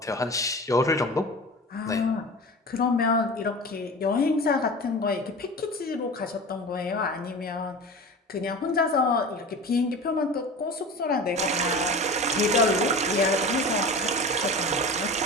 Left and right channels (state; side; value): normal; both; correlation 0.33